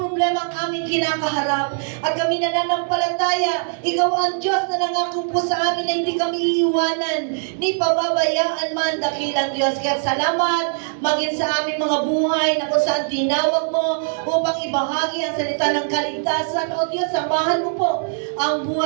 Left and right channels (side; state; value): left; silent; digital silence